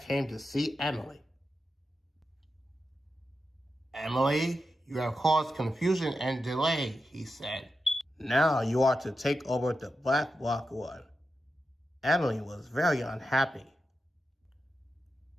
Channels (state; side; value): normal; both; correlation 0.89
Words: came to see Emily. "Emily, you have caused confusion and delay," he said. "Now you are to take over the Black Rock run." Emily was very unhappy.